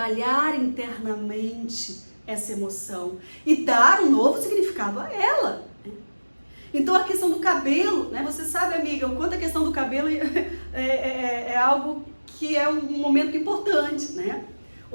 internamente essa emoção e dar um novo significado a ela. Né? Então a questão do cabelo, né? Você sabe, amiga, o quanto a questão do cabelo é algo que é um momento importante, né?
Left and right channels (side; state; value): both; inverted; correlation -1.00